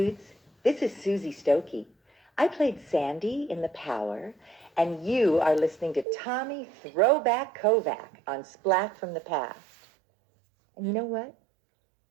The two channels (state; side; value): drops out; left; at 6.1 s